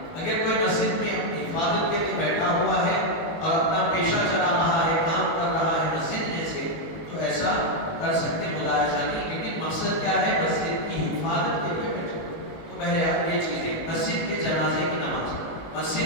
اگر کوئی مسجد میں اپنی حفاظت کے لیے بیٹھا ہوا ہے اور اپنا پیشہ چلا رہا ہے، کام کر رہا ہے مسجد میں سے، تو ایسا کر سکتے، ملاحظہ نہیں، لیکن مقصد کیا ہے؟ مسجد کی حفاظت کے لیے بیٹھا۔ تو بہرحال یہ چیزیں، مسجد میں جنازے کی نماز،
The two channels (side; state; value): right; late; 19 ms